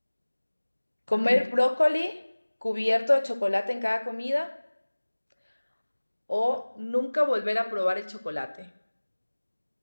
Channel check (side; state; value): both; inverted; correlation -1.00